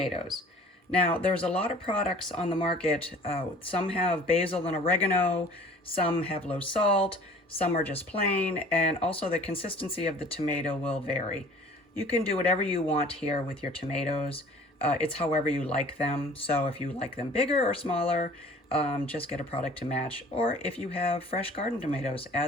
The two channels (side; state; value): both; normal; correlation 0.49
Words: Now, there's a lot of products on the market. Some have basil and oregano, some have low salt, some are just plain, and also the consistency of the tomato will vary. You can do whatever you want here with your tomatoes. It's however you like them. So if you like them bigger or smaller, just get a product to match. Or if you have fresh garden tomatoes,